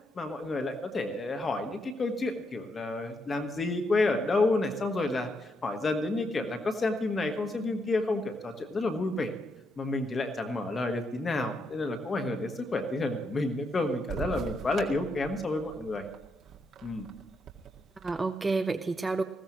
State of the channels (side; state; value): both; normal; correlation 0.79